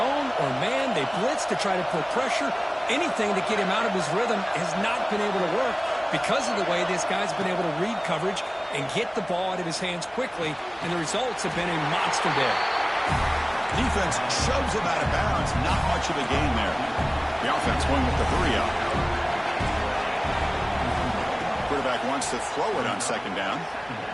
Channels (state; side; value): identical; both; correlation 1.00